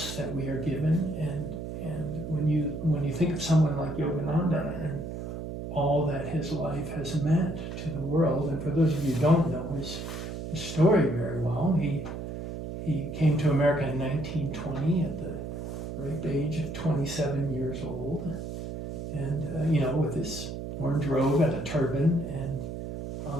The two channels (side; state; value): right; noise; hum, 7 dB below the sound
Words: that we are given, and when you think of someone like Yogananda and all that his life has meant to the world, and for those of you who don't know his story very well, he came to America in 1920 at the ripe age of 27 years old, and with his orange robe and a turban, and